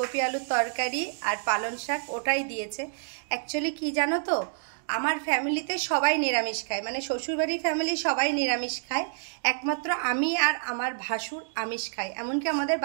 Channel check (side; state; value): left; silent; digital silence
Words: আলুর তরকারি আর পালং শাক, ওটাই দিয়েছে। অ্যাকচুয়ালি কি জানো তো, আমার ফ্যামিলিতে সবাই নিরামিষ খায়, মানে শ্বশুরবাড়ির ফ্যামিলি সবাই নিরামিষ খায়। একমাত্র আমি আর আমার ভাসুর আমিষ খায়, এমনকি আমাদের